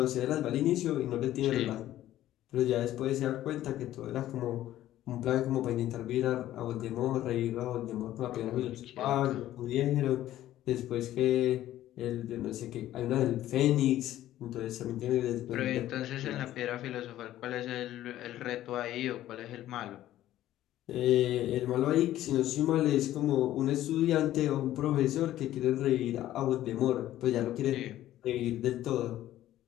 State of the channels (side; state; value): right; quieter; 13.6 dB